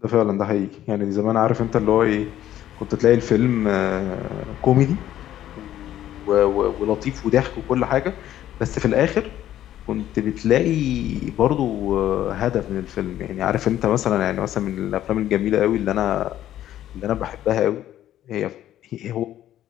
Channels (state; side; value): quieter; right; 12.3 dB